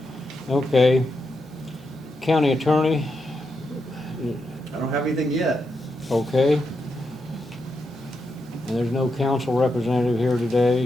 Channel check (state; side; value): noise; right; hum, 29 dB below the sound